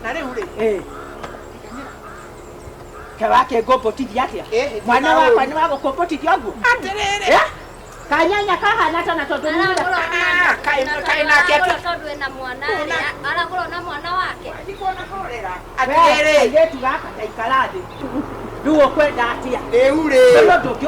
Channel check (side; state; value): both; identical; correlation 1.00